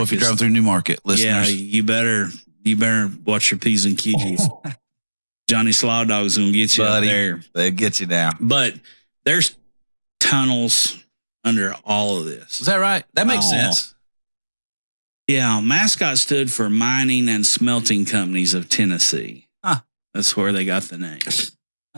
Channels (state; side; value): inverted; both; correlation -1.00